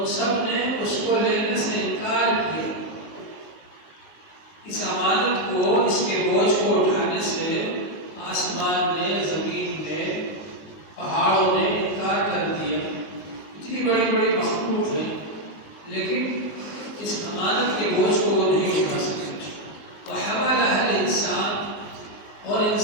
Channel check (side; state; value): right; late; 19 ms